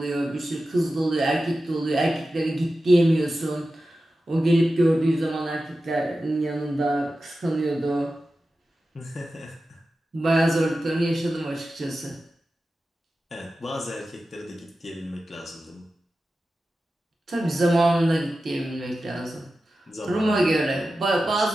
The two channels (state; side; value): normal; both; correlation 0.93